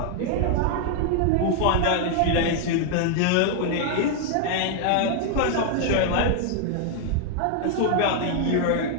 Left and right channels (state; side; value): different; both; correlation 0.00